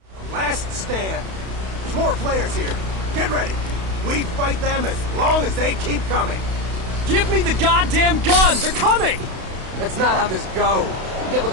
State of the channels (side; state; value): left; late; 32 ms